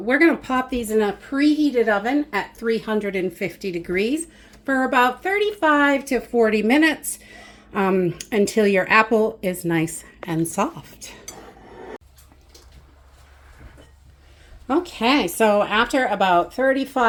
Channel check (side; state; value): both; identical; correlation 1.00